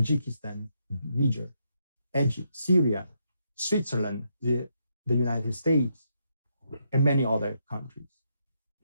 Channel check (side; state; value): both; inverted; correlation -0.79